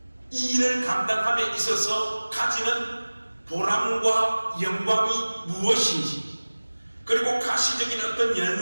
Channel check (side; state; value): both; inverted; correlation -1.00